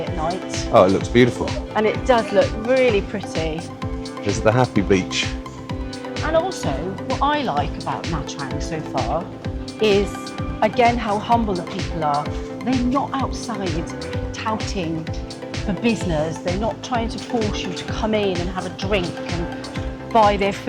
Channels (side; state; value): both; identical; correlation 1.00